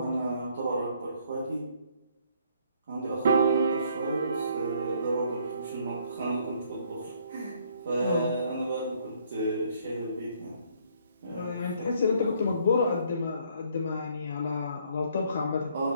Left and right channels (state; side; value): inverted; both; correlation -0.65